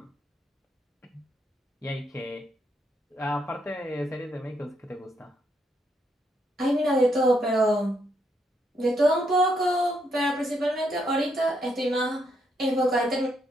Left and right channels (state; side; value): normal; both; correlation 0.76